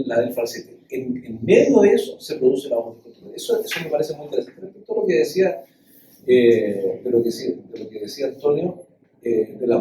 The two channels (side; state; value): both; identical; correlation 1.00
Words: falsete. En medio de eso se produce la voz del contratenor. Eso me parece muy interesante. Respecto a lo que decía, de lo que decía Antonio, del